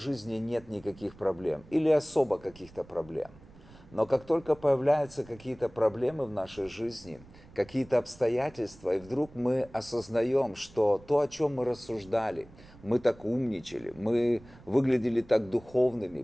нет никаких проблем или особо каких-то проблем. Но как только появляются какие-то проблемы в нашей жизни, какие-то обстоятельства, и вдруг мы осознаем, что то, о чем мы рассуждали, мы так умничали, мы выглядели так духовными,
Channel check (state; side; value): noise; right; rumble, 23 dB below the sound